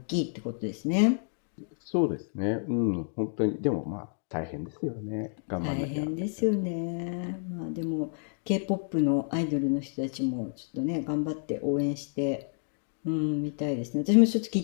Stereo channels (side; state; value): right; silent; digital silence